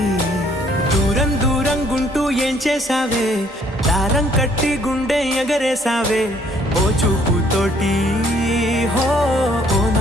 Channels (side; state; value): both; normal; correlation 0.63